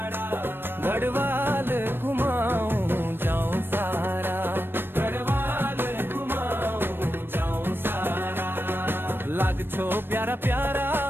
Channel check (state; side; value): late; left; 0.10 ms